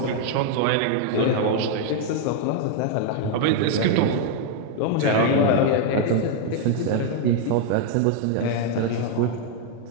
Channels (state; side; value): different; both; correlation 0.00